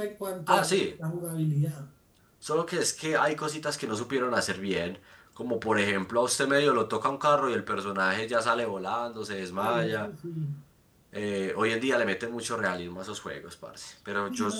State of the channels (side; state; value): both; identical; correlation 1.00